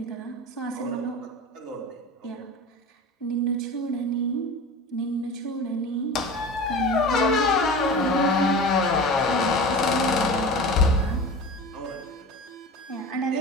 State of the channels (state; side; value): normal; both; correlation 0.33